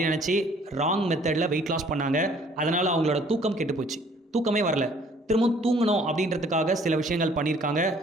நினச்சி ராங் மெத்தடில் வெயிட் லாஸ் பண்ணாங்க. அதனால் அவங்களோட தூக்கம் கெட்டு போச்சு, தூக்கமே வரல. திரும்பவும் தூங்கணும் அப்படின்றதுக்காக சில விஷயங்கள் பண்ணியிருக்காங்க.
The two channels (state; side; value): normal; both; correlation 0.58